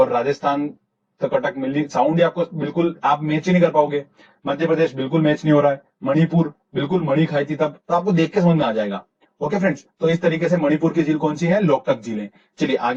राजस्थान तो कटक मिली, साउंड ही आपको बिल्कुल आप मैच ही नहीं कर पाओगे। मध्य प्रदेश बिल्कुल मैच नहीं हो रहा है। मणिपुर बिल्कुल मणि खाई थी तब, तो आपको देख के समझ में आ जाएगा। ओके फ्रेंड्स, तो इस तरीके से मणिपुर की झील कौन सी है? लोकटक झील है। चलिए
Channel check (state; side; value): identical; both; correlation 1.00